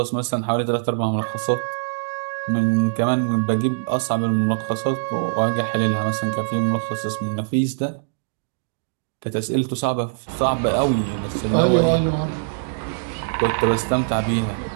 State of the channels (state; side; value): silent; left; digital silence